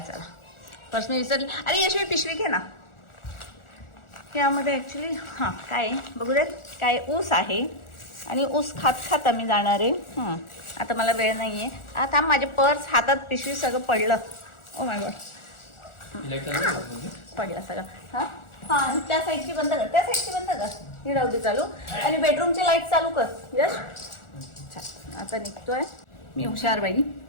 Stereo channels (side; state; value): right; late; 1.4 ms